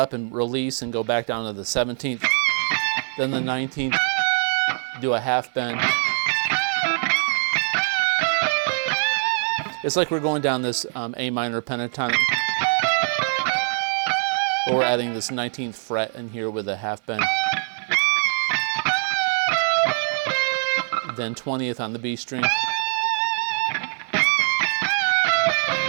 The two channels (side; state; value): left; silent; 63 dB below the other